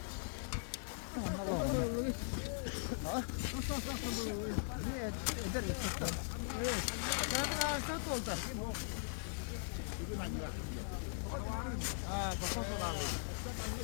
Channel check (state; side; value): silent; right; digital silence